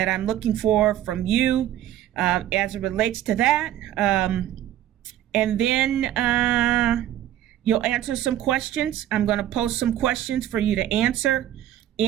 I'm looking for from you as it relates to that. And then you'll answer some questions. I'm going to post some questions for you to answer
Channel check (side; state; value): left; quieter; 12.2 dB